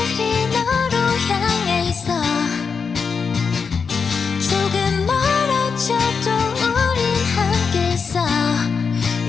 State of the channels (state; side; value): quieter; right; 5.6 dB